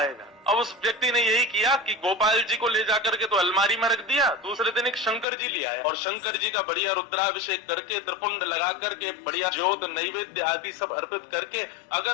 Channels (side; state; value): right; drops out; at 5.2 s